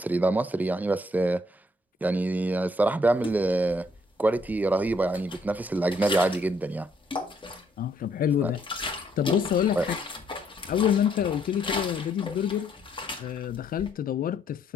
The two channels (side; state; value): both; normal; correlation 0.69